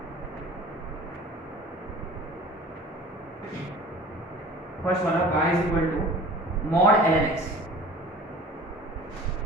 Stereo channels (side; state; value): both; normal; correlation 0.44